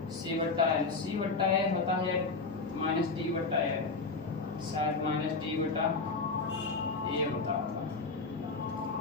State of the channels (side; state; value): right; quieter; 4.0 dB